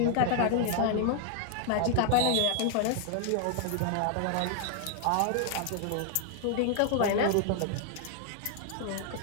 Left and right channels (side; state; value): both; different; correlation 0.00